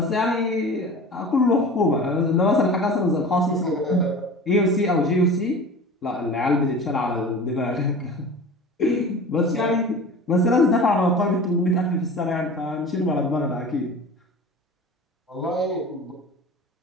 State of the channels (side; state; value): both; normal; correlation 0.37